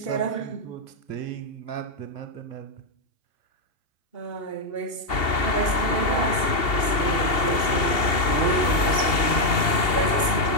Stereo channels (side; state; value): right; late; 2.7 ms